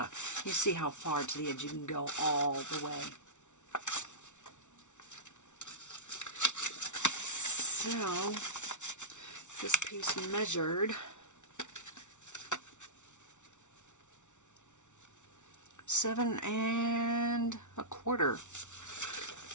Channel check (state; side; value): late; right; 0.85 ms